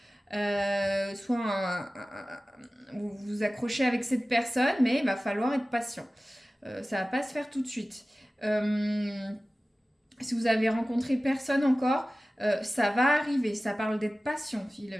Soit vous vous accrochez avec cette personne, mais il va falloir être patient. Ça va pas se faire tout de suite. Si vous avez rencontré personne encore, ça va arriver. Ça parle d'être patient.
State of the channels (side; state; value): both; normal; correlation 0.97